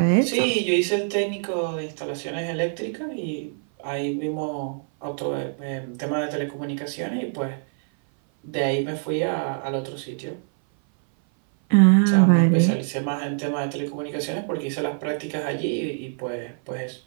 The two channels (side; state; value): left; silent; 58 dB below the other